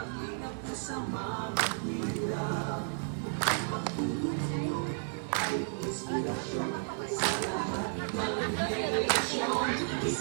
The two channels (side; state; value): left; silent; digital silence